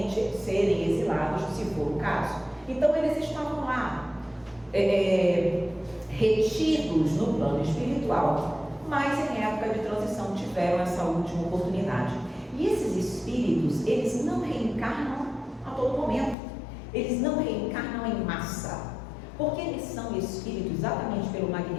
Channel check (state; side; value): drops out; right; at 16.4 s